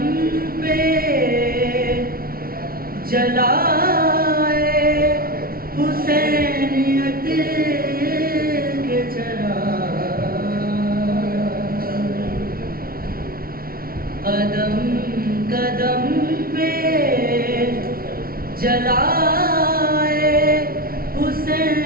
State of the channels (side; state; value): left; late; 0.43 ms